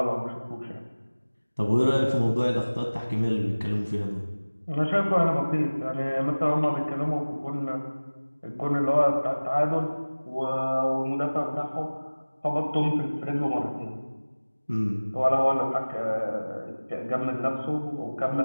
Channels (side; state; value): both; inverted; correlation -1.00